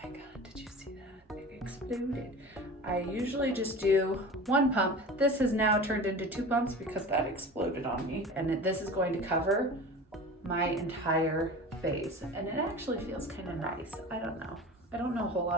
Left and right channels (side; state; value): both; normal; correlation 0.35